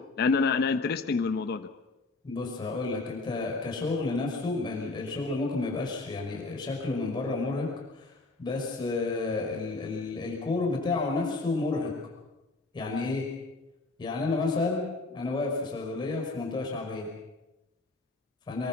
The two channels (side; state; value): right; quieter; 3.3 dB